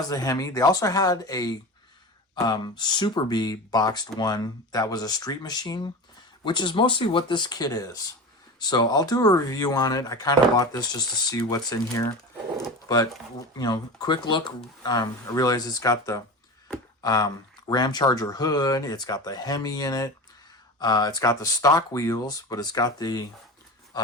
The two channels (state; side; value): normal; both; correlation 0.29